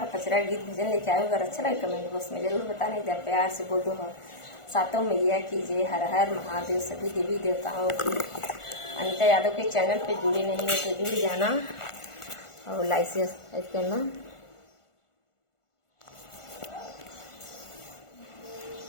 पचरा गीत भजन लेके आए। अगर अच्छा लगे कमेंट बॉक्स में जरूर बताना। इधर प्यार से बोल दो सातों मैया की जय, हर हर महादेव, सभी देवी देवताओं की। अनीता यादव के चैनल पे जुड़े नहीं है तो जुड़ जाना और लाइक सब्सक्राइब करना।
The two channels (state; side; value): late; right; 1.5 ms